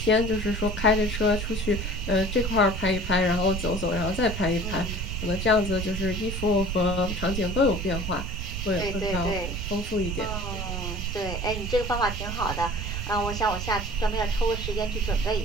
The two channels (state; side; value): noise; right; rumble, 4 dB below the sound